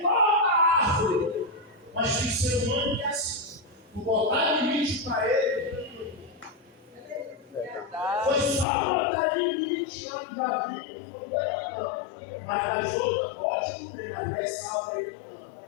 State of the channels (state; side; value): drops out; right; at 8.7 s